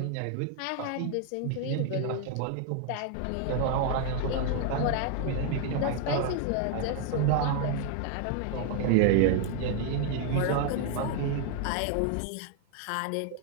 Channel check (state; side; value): different; both; correlation 0.00